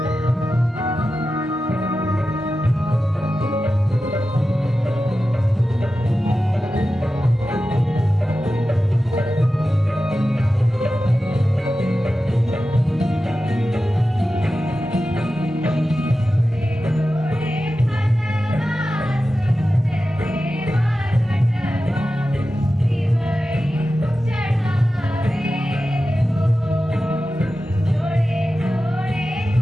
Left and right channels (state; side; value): normal; both; correlation 0.93